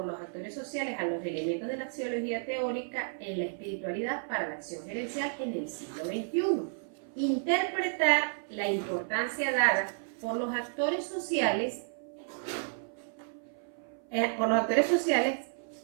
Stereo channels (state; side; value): silent; left; 56 dB below the other